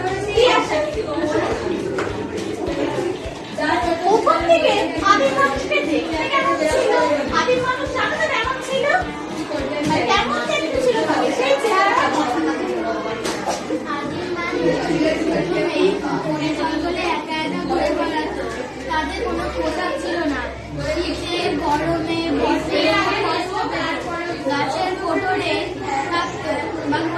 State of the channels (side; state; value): both; identical; correlation 1.00